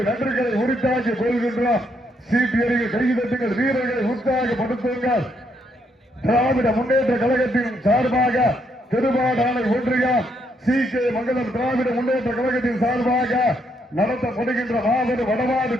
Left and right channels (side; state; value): both; normal; correlation 0.75